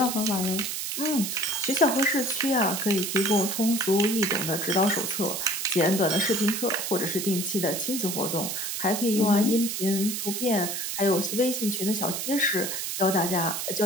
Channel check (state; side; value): noise; right; hiss, 3 dB below the sound